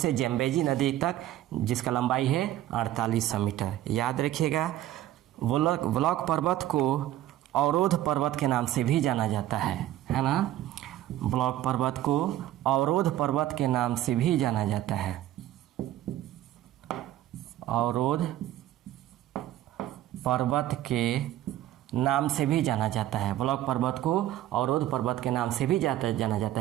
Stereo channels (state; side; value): quieter; left; 13.4 dB